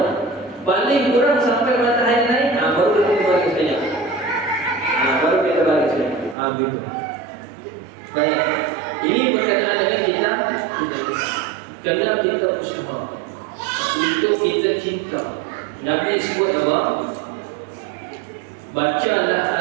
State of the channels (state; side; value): drops out; left; at 6.4 s